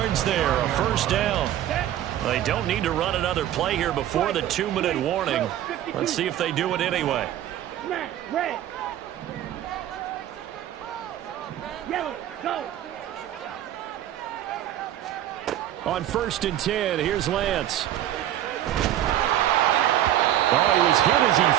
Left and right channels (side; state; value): left; quieter; 12.1 dB